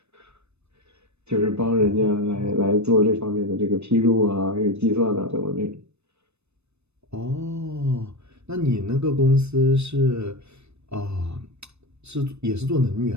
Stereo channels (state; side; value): late; left; 0.81 ms